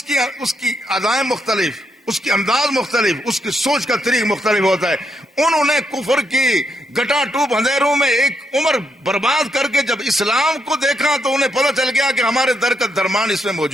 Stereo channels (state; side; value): normal; both; correlation 0.78